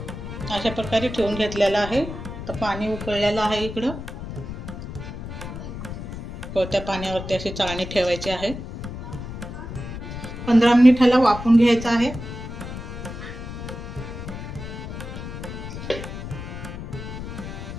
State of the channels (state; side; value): noise; left; rumble, 9 dB below the sound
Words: अशा प्रकारे ठेवून घेतलेला आहे। तर पाणी उकळलेलं आहे इकडं, त्या पाण्यावरती अशी चाळणी ठेवायची आहे। 15 मिनिटाला वाफवून घ्यायचं आहे।